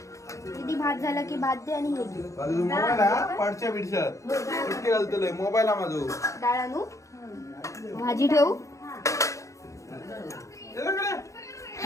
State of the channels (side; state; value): right; late; 0.15 ms